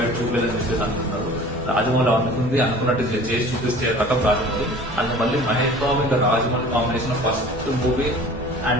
చూపించాలని చెప్పేసి అనుకుంటున్నారు. రాజమౌళి అనుకున్నట్టు చేసి చూపిస్తే రకం రాజమౌళి. అండ్ మళ్ళీ మహేష్ బాబు ఇంకా Rajamouli combination first movie.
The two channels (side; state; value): both; normal; correlation 0.44